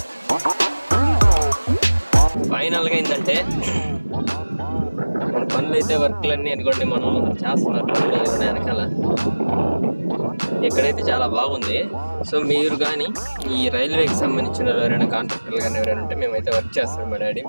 ఫైనల్గా ఏంటంటే మన పనులు అయితే వర్క్లన్నీ అనుకోండి మనం చేస్తున్నారు పనులు వెనకాల. ఎక్కడైతే చాలా బాగుంది. సో మీరు కానీ ఈ రైల్వేకి సంబంధించిన ఎవరైనా కాంట్రాక్టర్లు కానీ ఎవరైనా ఉంటే మేమైతే వర్క్ చేస్తాం. మా డాడీ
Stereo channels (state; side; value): inverted; both; correlation -1.00